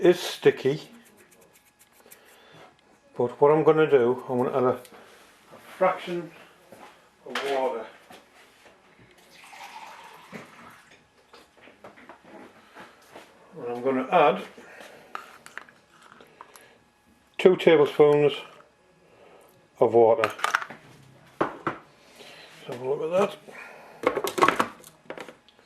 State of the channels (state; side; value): identical; both; correlation 1.00